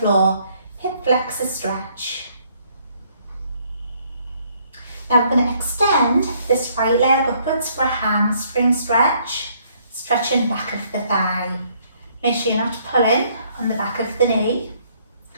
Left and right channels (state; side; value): inverted; both; correlation -0.66